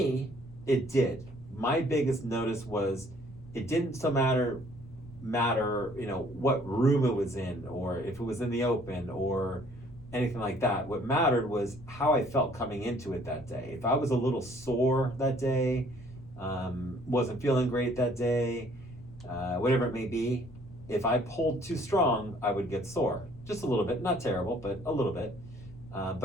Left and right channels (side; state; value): left; noise; rumble, 19 dB below the sound